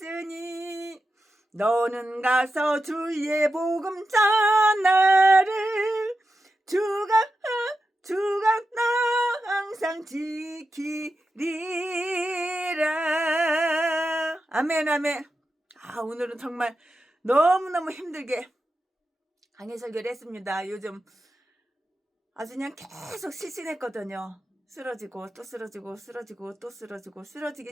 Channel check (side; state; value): both; normal; correlation 0.90